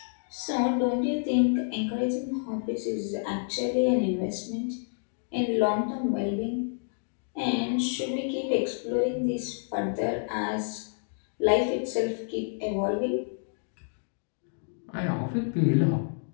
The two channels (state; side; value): silent; right; digital silence